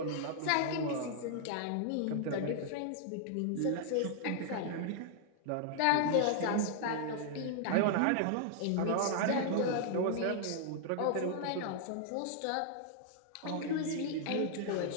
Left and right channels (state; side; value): different; both; correlation -0.01